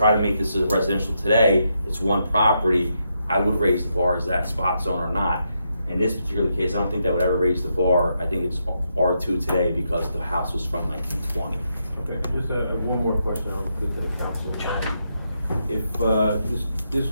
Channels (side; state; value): both; inverted; correlation -0.81